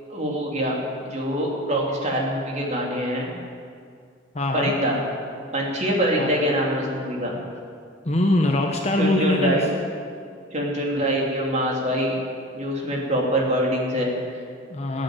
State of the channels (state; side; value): normal; both; correlation 0.35